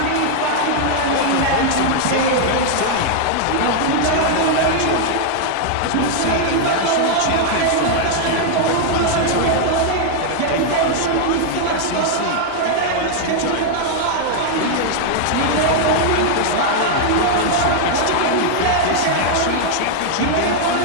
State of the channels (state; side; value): different; both; correlation 0.00